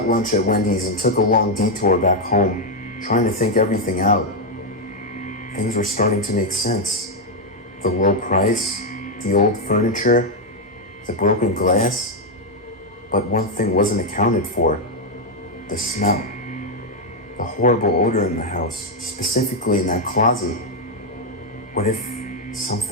lunch at Wendy's and took a long detour back home, trying to think everything out. Things were starting to make sense. The low price, the old furniture, the broken glass. But one thing wasn't accounted for. The smell. The horrible odor in the house, specifically in that closet. What if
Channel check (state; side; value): normal; both; correlation 0.01